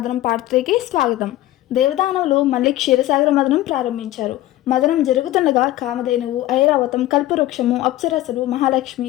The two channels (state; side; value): quieter; right; 15.3 dB